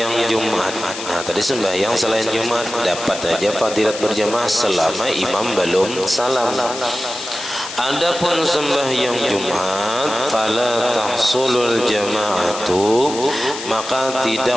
Jumat. Nah tadi sembahyang selain Jumat dapat aja fadilat berjamaah selama imam belum salam. Adapun sembahyang Jumat, fala tahsulul jama'atu, maka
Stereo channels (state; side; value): noise; left; hiss, 9 dB below the sound